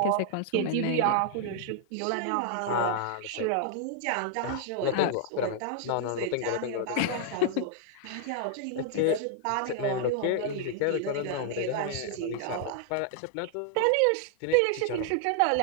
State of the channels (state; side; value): different; both; correlation -0.01